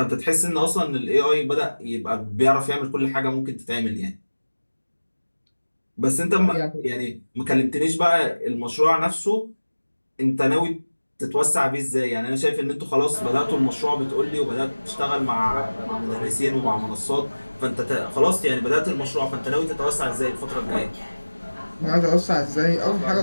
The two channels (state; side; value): inverted; both; correlation -1.00